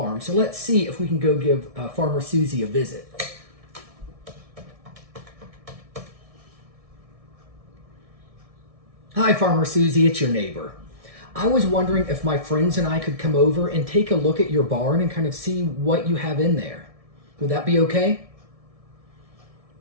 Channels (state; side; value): late; left; 1.6 ms